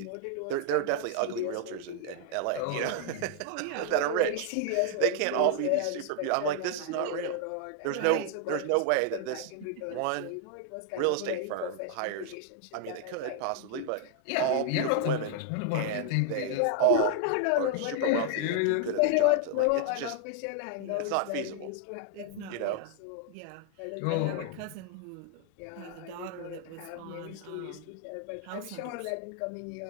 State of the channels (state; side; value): different; both; correlation 0.00